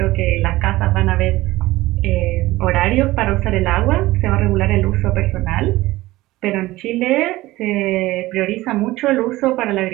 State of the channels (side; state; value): left; quieter; 18.1 dB